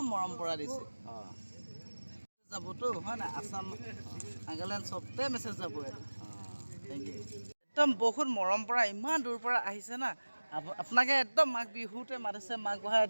মৰম পৰা দিছে যাবতো হয় না আসাম নাগালেণ্ড চবতে মেছেজ যাব এইটো থেংক ইউ একদম বহুত মৰম পৰা ইমান দূৰ পৰা আহিছে না আপোনাকে একদম মাঘ বিহুতে মাতিছে মাঘ বহাই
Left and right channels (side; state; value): both; inverted; correlation -1.00